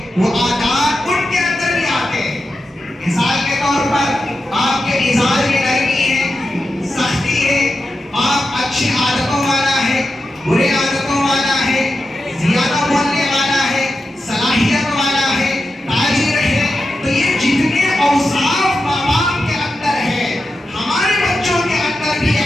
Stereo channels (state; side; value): normal; both; correlation 0.90